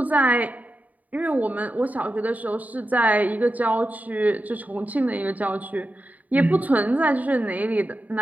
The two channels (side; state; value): left; late; 0.075 ms